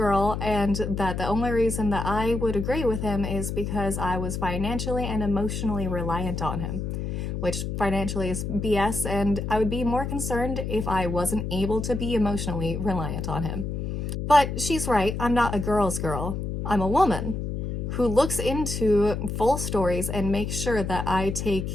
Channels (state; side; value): noise; left; hum, 3 dB below the sound